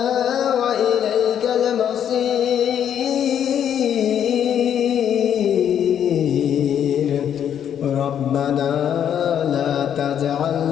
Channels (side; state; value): right; quieter; 9.3 dB